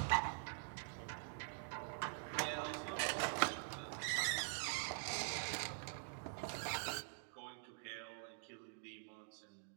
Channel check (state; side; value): silent; left; digital silence